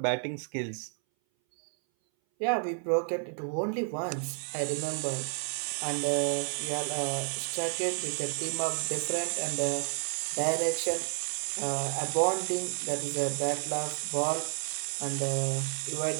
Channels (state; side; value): silent; left; 57 dB below the other